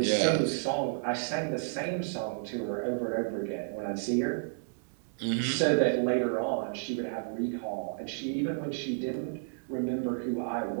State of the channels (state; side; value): silent; left; digital silence